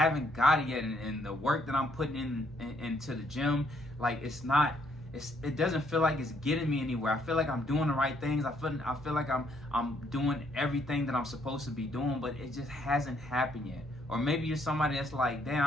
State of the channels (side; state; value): both; normal; correlation 0.69